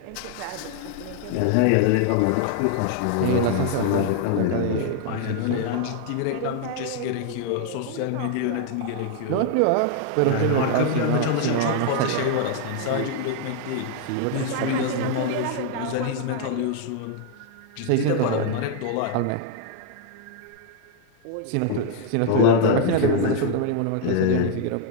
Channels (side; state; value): both; different; correlation 0.00